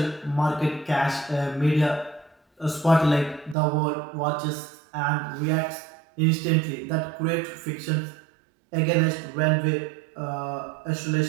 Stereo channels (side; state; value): left; drops out; at 3.6 s